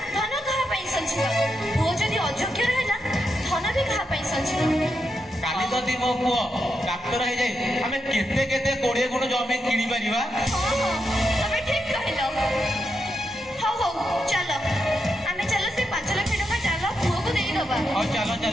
धन कहा पई संजीबा, पुओ जदि अयोग्य रहला धन भी कहा पई संजीबा। काली जदि मो पुओ डाक्टर हे जाय आमे केते केते 20 गुण जमी किनी परिबा। हां तमे ठीक कहिलो। हो हो चलो आमे चलो से 5 लाख टका चलो पुओ को देई दबा। हां चलो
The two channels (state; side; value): normal; both; correlation 0.85